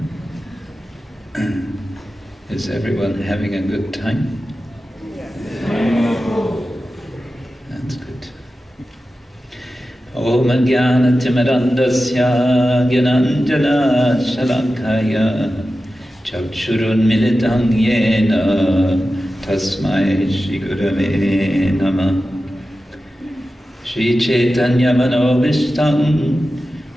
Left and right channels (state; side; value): normal; both; correlation 0.93